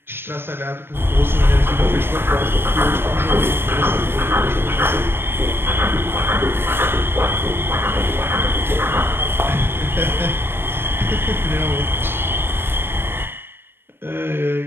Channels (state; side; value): late; left; 0.11 ms